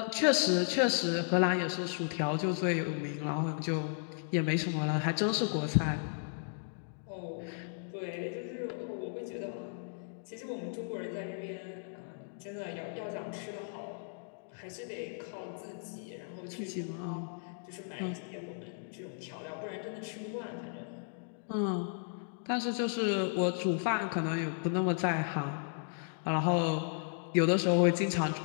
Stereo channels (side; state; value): right; silent; digital silence